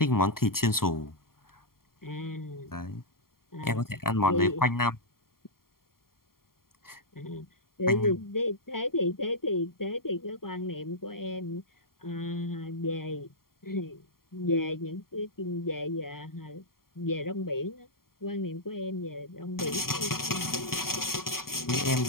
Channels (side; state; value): right; late; 0.92 ms